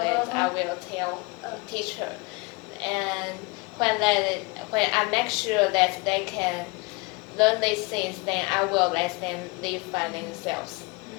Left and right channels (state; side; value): quieter; right; 26.9 dB